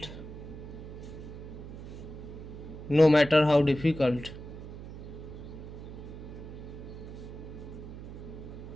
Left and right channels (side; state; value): right; noise; hum, 11 dB below the sound